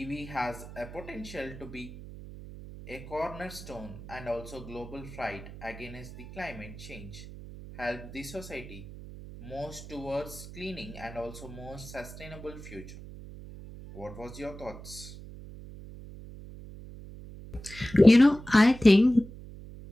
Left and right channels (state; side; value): noise; right; hum, 14 dB below the sound